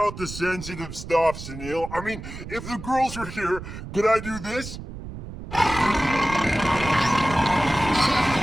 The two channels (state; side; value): noise; right; rumble, 11 dB below the sound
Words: the sensitive stuff, Sunil. I mean, if the girls were here, could I do this?